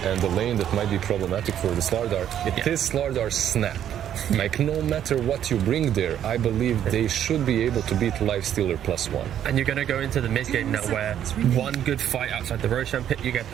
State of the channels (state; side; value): quieter; left; 10.3 dB